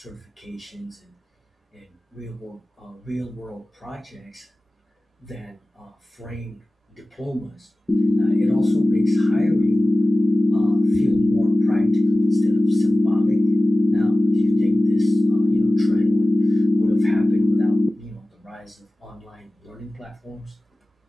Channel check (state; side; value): normal; both; correlation 0.97